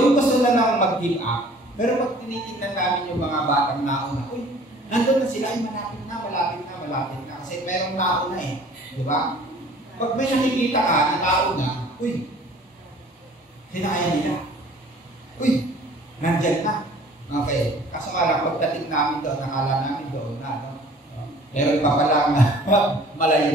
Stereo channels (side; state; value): both; normal; correlation 0.51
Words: gusto na lang mag-give up, pero pag tinitingnan namin yung mga batang nauna, uy, nandun na sila, ay malapit na. Kasi merong nauna eh. Di ba? Pag may nakikita ka na nauna, uy, hinaya nila. Uy, nandyan na. Okay. Kaso nga lang, pagdating namin doon, nakala namin doon na, no? Meron pa palang